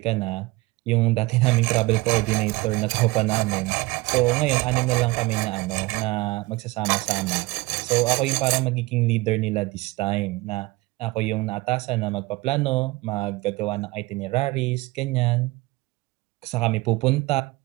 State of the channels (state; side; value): quieter; left; 21.5 dB